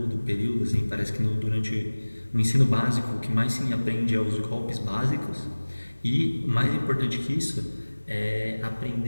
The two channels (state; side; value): inverted; both; correlation -1.00